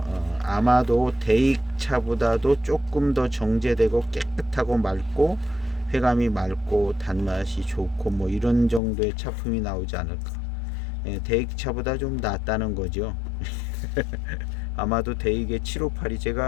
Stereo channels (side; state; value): right; drops out; at 8.8 s